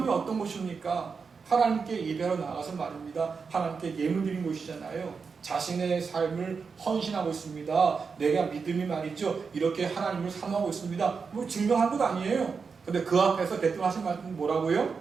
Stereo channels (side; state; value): left; quieter; 5.3 dB